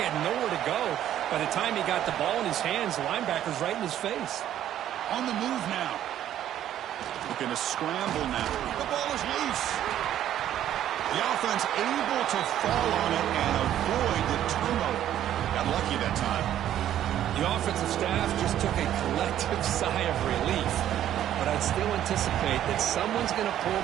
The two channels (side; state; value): left; quieter; 11.5 dB